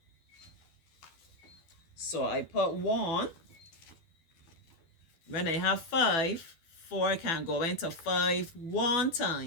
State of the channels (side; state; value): right; late; 12 ms